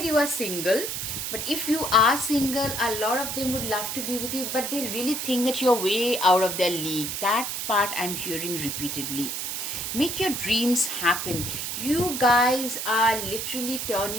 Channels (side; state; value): right; noise; hiss, 3 dB below the sound